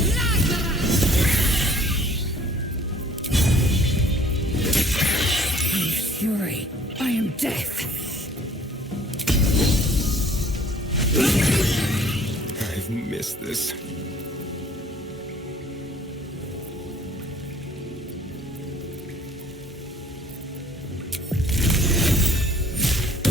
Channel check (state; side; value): normal; both; correlation 0.56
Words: Fury, I am death. I've missed this.